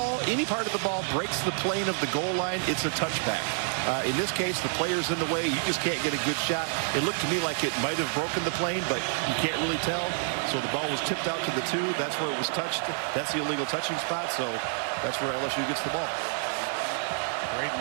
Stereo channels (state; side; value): silent; left; 59 dB below the other